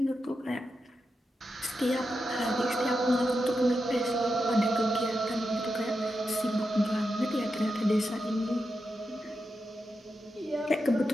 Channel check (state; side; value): normal; both; correlation 0.88